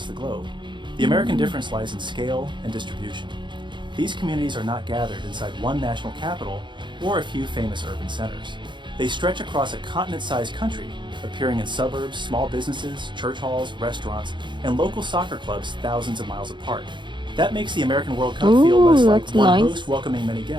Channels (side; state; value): left; late; 0.23 ms